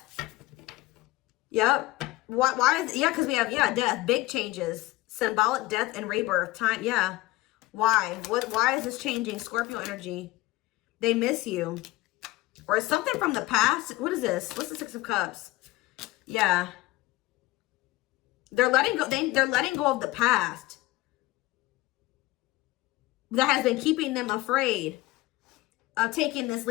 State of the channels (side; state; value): right; quieter; 19.0 dB